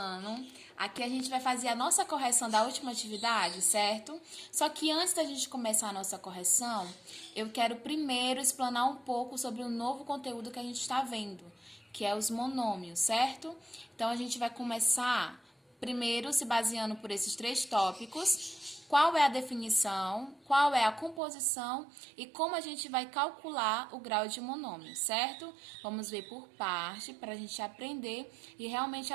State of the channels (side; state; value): left; drops out; at 21.2 s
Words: Aqui a gente vai fazer a nossa correção da última atividade, certo? Só que antes da gente começar a nossa correção, eu quero primeiro explanar um pouco sobre o novo conteúdo que a gente está vendo, que é os monômios, certo? Então a gente vai começar primeiro se baseando por esses três tópicos. Qual é a definição, qual é a composição e como a gente vai calcular o grau de monômio, certo? Vamos ver por parte para a gente aprender e realmente